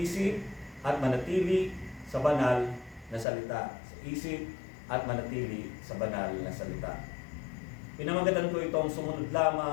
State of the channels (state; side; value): drops out; right; at 3.2 s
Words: at manatili sa banal na salita. Isa-isip at manatili sa banal na salita. Pinamagatan ko itong sumunod